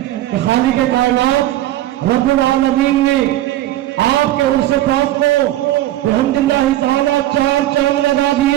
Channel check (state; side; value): quieter; left; 14.5 dB